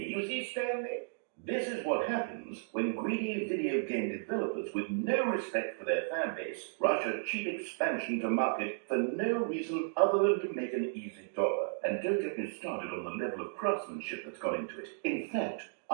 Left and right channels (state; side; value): silent; left; digital silence